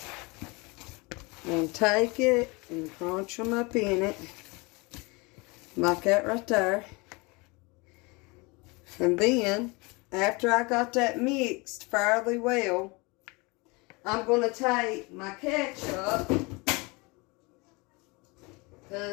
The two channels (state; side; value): quieter; right; 26.9 dB